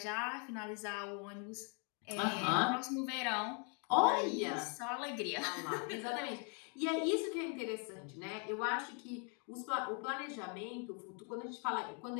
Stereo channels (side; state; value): right; quieter; 37.8 dB